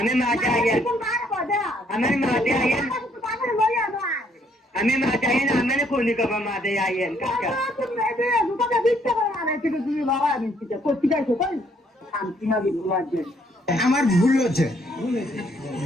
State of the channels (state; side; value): normal; both; correlation 0.67